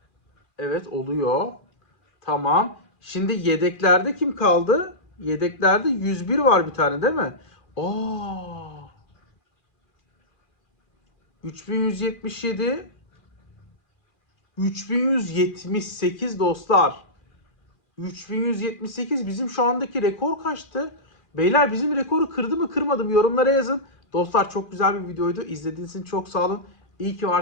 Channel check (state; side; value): late; right; 2.4 ms